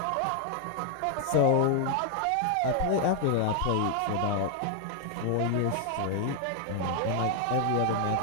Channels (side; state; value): both; different; correlation 0.00